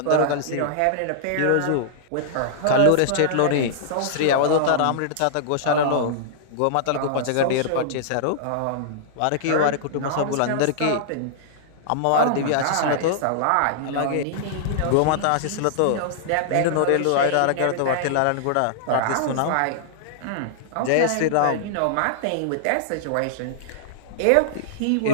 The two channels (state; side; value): different; both; correlation -0.02